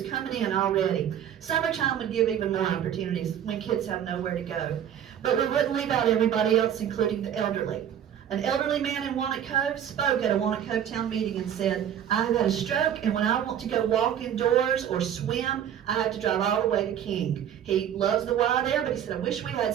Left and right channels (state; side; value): quieter; left; 9.7 dB